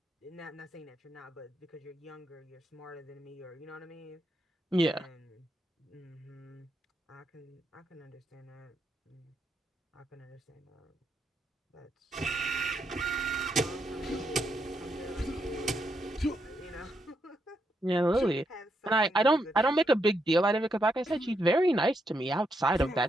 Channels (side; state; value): both; normal; correlation 0.80